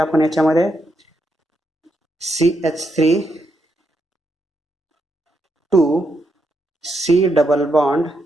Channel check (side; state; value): both; normal; correlation 0.81